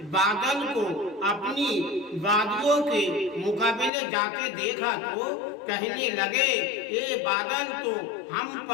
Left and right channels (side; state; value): right; drops out; at 3.9 s